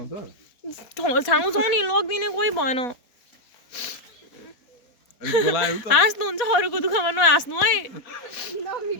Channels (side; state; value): right; late; 4.1 ms